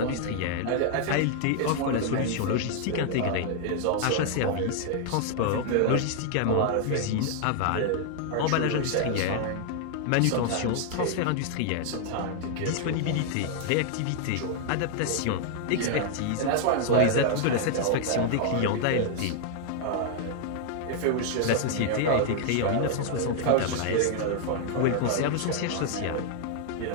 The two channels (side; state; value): both; different; correlation 0.00